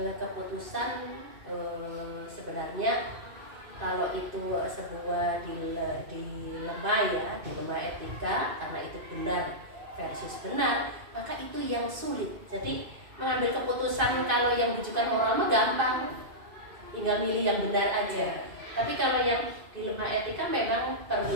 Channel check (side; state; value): left; late; 2.5 ms